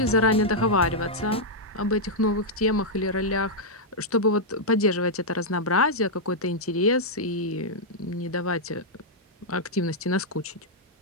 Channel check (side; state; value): both; normal; correlation -0.06